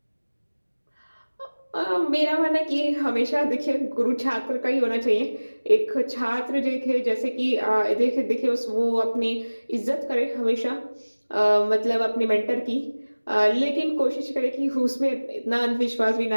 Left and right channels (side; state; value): both; inverted; correlation -1.00